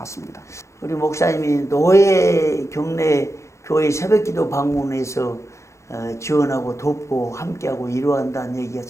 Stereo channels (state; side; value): late; right; 0.14 ms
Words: 우리 목사님이 노예 경내 교회 새벽기도 방문해서 지원하고 돕고 함께하고 이루어한다는 얘기가